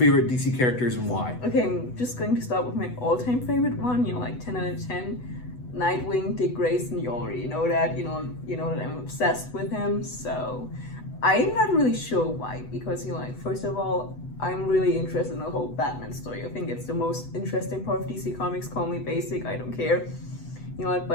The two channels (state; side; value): late; right; 8.1 ms